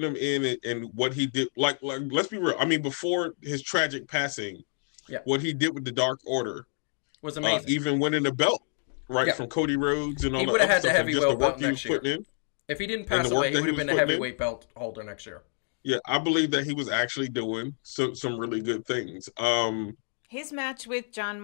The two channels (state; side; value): silent; right; 57 dB below the other